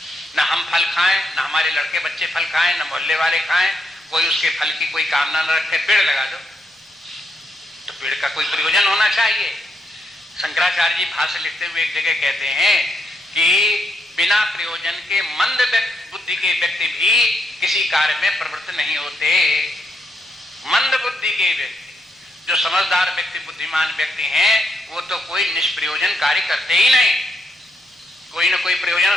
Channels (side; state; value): both; normal; correlation 0.79